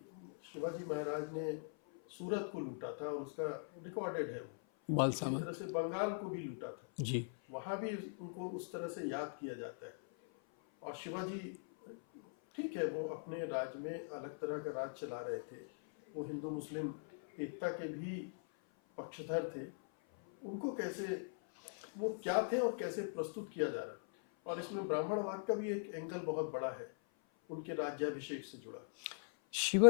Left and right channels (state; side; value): silent; right; 51 dB below the other